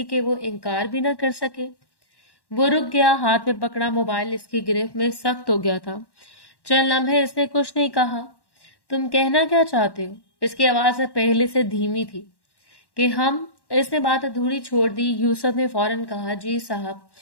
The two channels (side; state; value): right; late; 1.1 ms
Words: कि वो इनकार भी ना कर सके। वो रुक गया, हाथ में पकड़ा मोबाइल इसकी गिरफ्त में सख्त हो गया था। चंद लम्हे इसने कुछ नहीं कहा। तुम कहना क्या चाहते हो? इसकी आवाज अब पहले से धीमी थी। कि हम इसने बात अधूरी छोड़ दी। यूसुफ ने फौरन कहा, जी साहब,